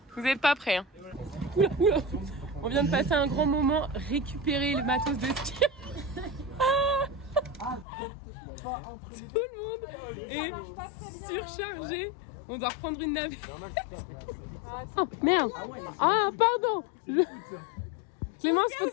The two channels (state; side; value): drops out; right; at 7.9 s